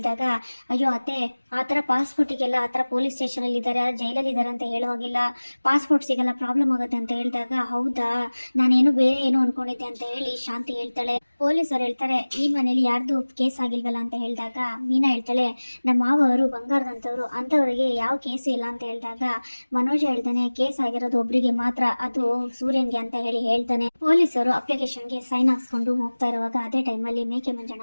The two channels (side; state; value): both; inverted; correlation -1.00